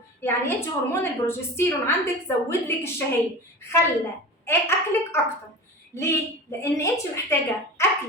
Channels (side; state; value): both; normal; correlation 0.32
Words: يعني انت هرمون البروجستيرون عندك زود لك الشهيه، خلى اكلك اكتر. ليه؟ لان انت محتاجه